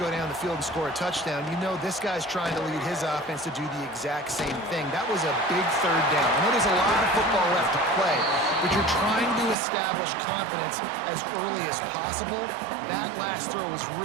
down the field and score a touchdown, you know this guy's trying to lead his offense to do the exact same thing. That was a big third down. I know there's a lot of football left to play, but you're trying to establish confidence as early as possible. That last throw is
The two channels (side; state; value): left; drops out; at 9.6 s